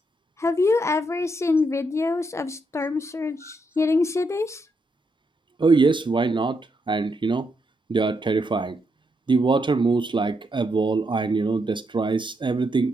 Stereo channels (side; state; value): both; normal; correlation 0.80